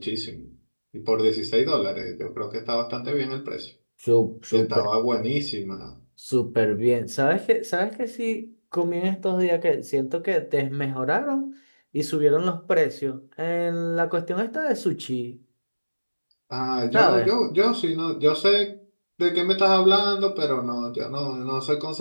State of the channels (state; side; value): inverted; both; correlation -1.00